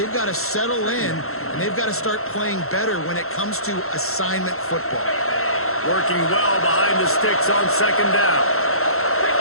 got to settle in, and they've got to start playing better when it comes to assignment football. Working well behind the sticks on second down.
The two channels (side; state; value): right; late; 0.62 ms